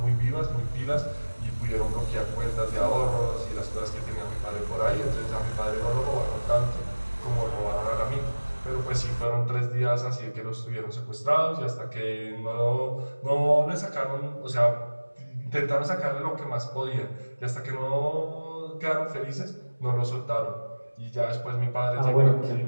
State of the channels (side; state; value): both; inverted; correlation -1.00